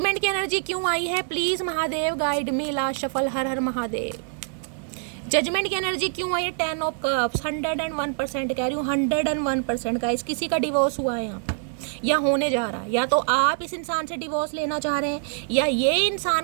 की एनर्जी क्यों आई है, please Mahadev guide me. Last shuffle. Her her Mahadev. Judgement की एनर्जी क्यों आई है, 10 ऑफ कप्स। 101% कह रही हूँ, 101% गाइस। किसी का डिवोर्स हुआ है यहाँ पर, या होने जा रहा है, या तो आप इस इंसान से डिवोर्स लेना चाह रहे हैं, या ये इंसान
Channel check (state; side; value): silent; left; 62 dB below the other